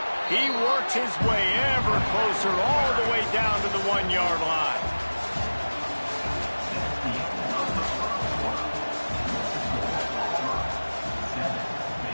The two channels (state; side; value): inverted; both; correlation -1.00